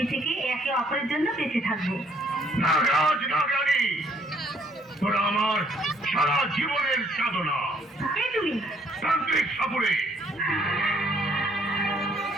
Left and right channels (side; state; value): both; normal; correlation 0.65